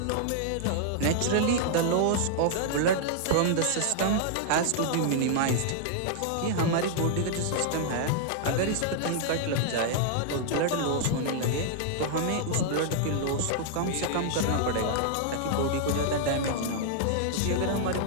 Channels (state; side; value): different; both; correlation -0.01